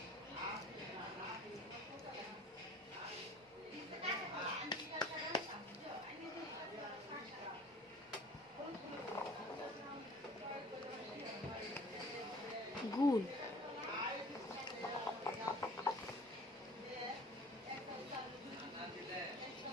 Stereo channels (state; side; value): normal; both; correlation 0.47